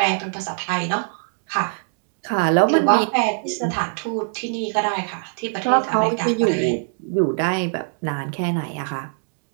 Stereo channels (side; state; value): left; silent; digital silence